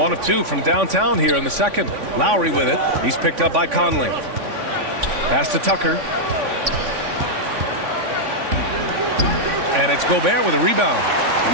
of 2 from downtown here in the second. Lowry with it. He's picked up by Conley. Pass to Tucker. And it's Gobert with a rebound. You're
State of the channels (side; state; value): left; late; 3.5 ms